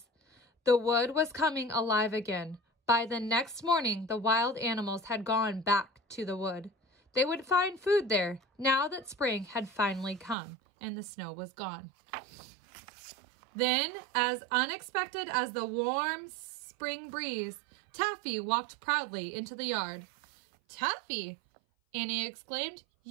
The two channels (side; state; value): left; drops out; at 10.4 s